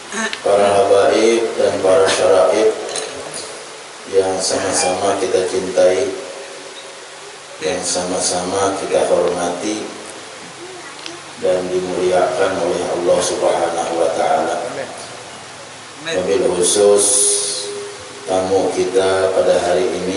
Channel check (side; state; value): both; identical; correlation 1.00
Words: Para habaib dan para syaraib yang sama-sama kita cintai, yang sama-sama kita hormati dan dimuliakan oleh Allah Subhanahu wa taala. Wabil khusus tamu kita pada hari